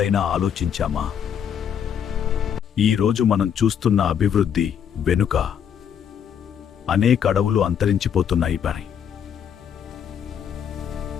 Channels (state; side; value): quieter; right; 8.3 dB